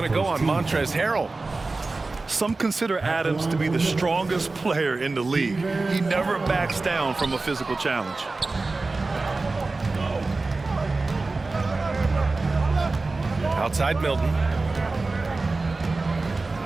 to go on Montrezl Harrell. Some consider Adams to be the strongest player in the league. He never backs down from a physical challenge. Outside Milton.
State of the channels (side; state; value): left; quieter; 3.5 dB